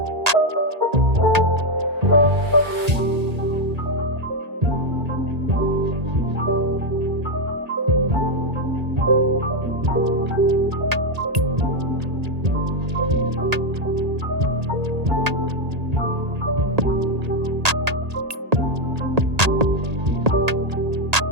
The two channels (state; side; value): late; left; 1.8 ms